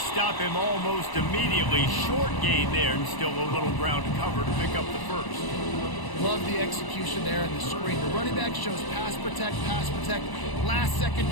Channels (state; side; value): late; right; 1.0 ms